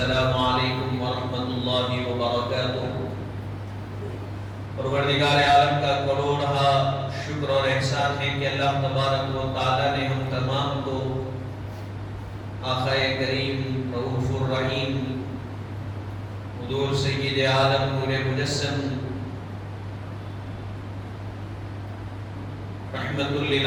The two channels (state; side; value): identical; both; correlation 1.00